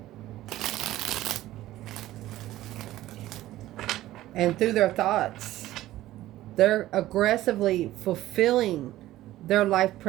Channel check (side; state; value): left; quieter; 15.1 dB